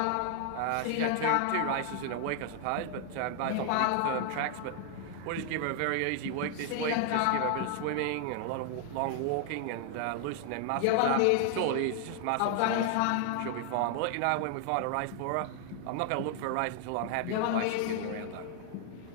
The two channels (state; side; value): different; both; correlation 0.00